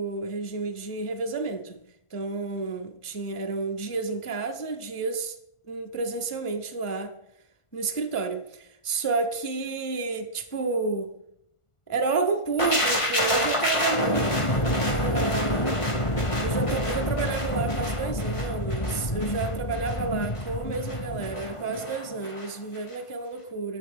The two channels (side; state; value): right; late; 1.4 ms